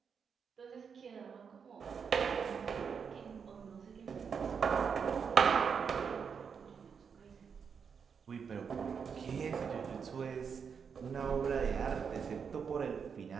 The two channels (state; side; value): quieter; left; 6.5 dB